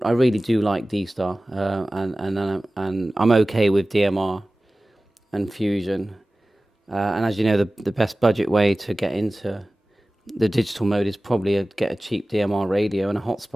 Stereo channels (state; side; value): normal; both; correlation 0.97